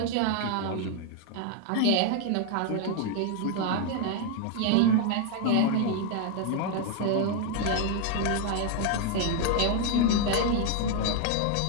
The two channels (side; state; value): both; different; correlation 0.00